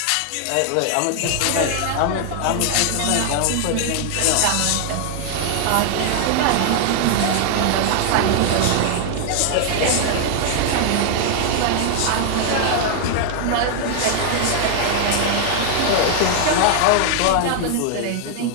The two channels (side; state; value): both; different; correlation 0.00